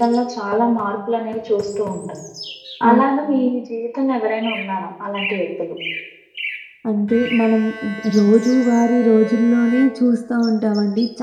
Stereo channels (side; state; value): both; identical; correlation 1.00